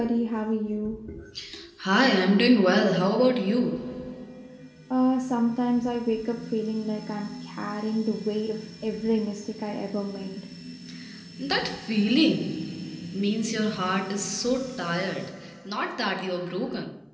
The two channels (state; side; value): identical; both; correlation 1.00